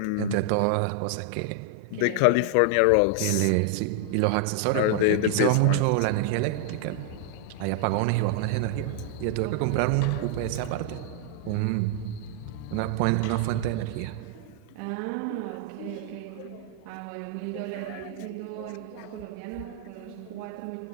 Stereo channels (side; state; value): both; different; correlation 0.00